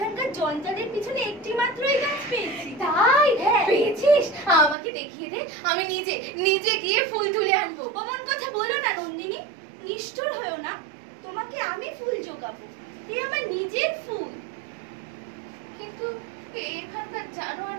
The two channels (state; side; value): drops out; left; at 4.8 s